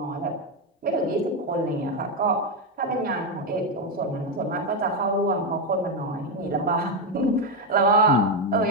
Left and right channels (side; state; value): both; normal; correlation 0.07